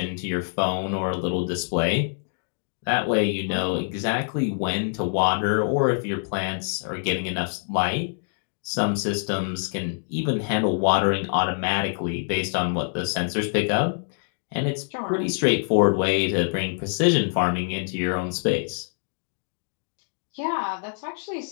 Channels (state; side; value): silent; right; digital silence